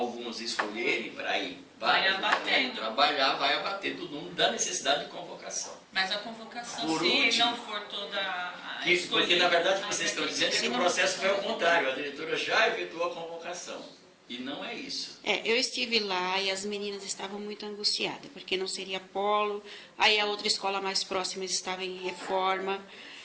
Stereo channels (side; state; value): both; identical; correlation 1.00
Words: escolherem para ir Vai abatendo. trabalhar, vai abater do número da necessidade de convocação. Mas a convocação, Por se último, não for toda a Porque na verdade aí vocês vai estão ter dizendo que o processo foi ao contrário, a diretora já efetuou a convocação. E não é isso. Eu estive lá e as meninas estavam muito angustiadas, porque não seria polo, aí a outra escola mais próxima estava em reforma,